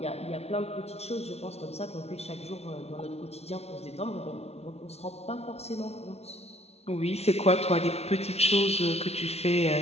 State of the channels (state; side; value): late; right; 0.31 ms